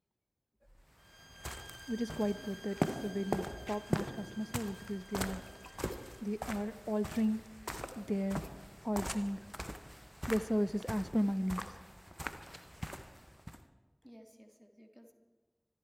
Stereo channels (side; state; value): both; identical; correlation 1.00